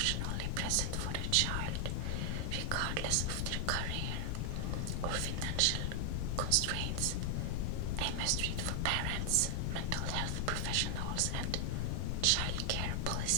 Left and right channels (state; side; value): different; both; correlation 0.00